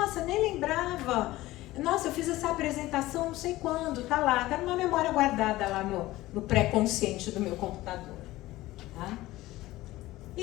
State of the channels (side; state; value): right; quieter; 17.4 dB